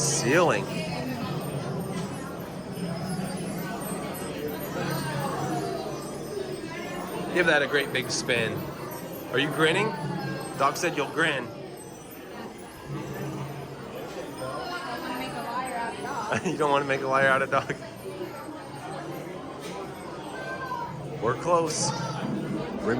Give that a great big spin. Are you grinning? Doc said you'll grin. You don't want to make a liar out of Doc? We're close.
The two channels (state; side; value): identical; both; correlation 1.00